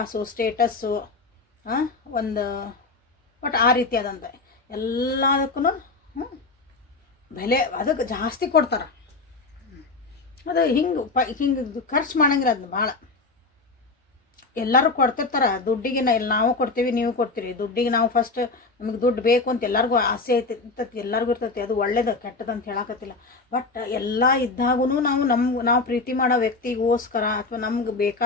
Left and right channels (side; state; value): right; quieter; 3.8 dB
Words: ಸ್ಟೇಟಸ್ಸು ಒಂದು ಬಟ್ ಆ ರೀತಿ ಅದಂತ ಎಲ್ಲದಕ್ಕೂ ಬೆಲೆ ಅದಕ್ಕೆ ಜಾಸ್ತಿ ಕೊಡ್ತಾರೆ. ಅದು ಹಿಂಗೆ ಖರ್ಚು ಮಾಡಂಗಿಲ್ಲ. ಅದನ್ನ ಭಾಳ ಎಲ್ಲರೂ ಕೊಡ್ತಿರ್ತಾರೆ ದುಡ್ಡಿಗೆ. ನಾವು ಕೊಡ್ತೀವಿ, ನೀವು ಕೊಡ್ತೀರಿ. ದುಡ್ಡಿಗೆ ನಾವು ಫಸ್ಟ್ ನಮಗೆ ದುಡ್ಡು ಬೇಕು ಅಂತ ಎಲ್ಲರಿಗೂ ಆಸೆ ಇರ್ತೈತಿ, ಎಲ್ಲರಿಗೂ ಇರ್ತೈತಿ. ಅದು ಒಳ್ಳೇದು ಕೆಟ್ಟದ್ದು ಅಂತ ಹೇಳಕತ್ತಿಲ್ಲ. ಬಟ್ ಎಲ್ಲ ಇದ್ದಾಗೂ ನಾವು ಪ್ರೀತಿ ಮಾಡೋ ವ್ಯಕ್ತಿಗೋಸ್ಕರ ಅಥವಾ ನಮ್ಗೆ